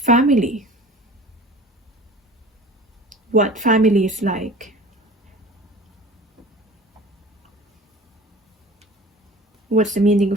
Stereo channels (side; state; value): both; normal; correlation 0.42